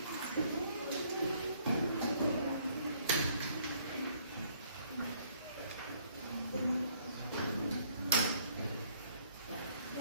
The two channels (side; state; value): both; inverted; correlation -0.65